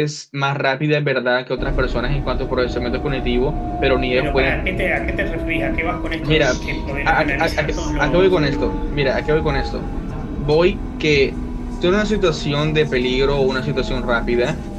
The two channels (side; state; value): both; identical; correlation 1.00